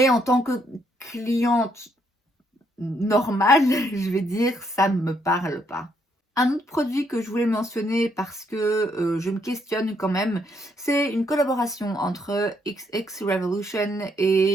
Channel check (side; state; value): both; normal; correlation 0.73